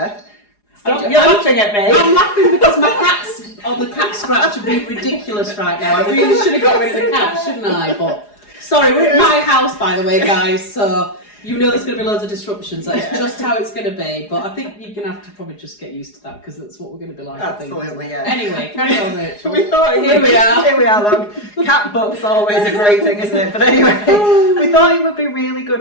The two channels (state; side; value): late; right; 4.8 ms